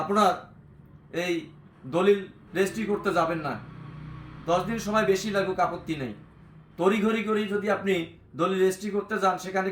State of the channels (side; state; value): both; identical; correlation 1.00